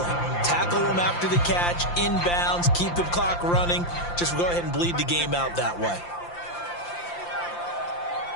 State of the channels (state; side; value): late; right; 5.8 ms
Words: Tackle them after the catch, inbounds, keep the clock running. Just go ahead and bleed the game out that way.